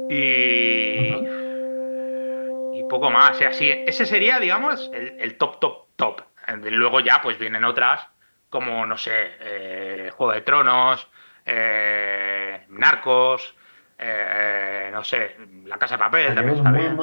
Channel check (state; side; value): inverted; both; correlation -1.00